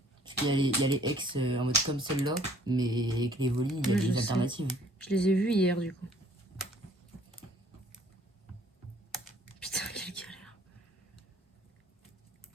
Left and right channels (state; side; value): normal; both; correlation 0.58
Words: Parce qu'il y a les ex en mode comme celle-là, mais avec les évoluées, il y a Oui, je des sais. alternatives. Je les ai vus hier du coup. Putain, quelle galère.